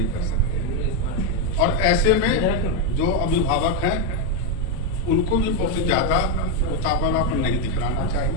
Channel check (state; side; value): normal; both; correlation 0.04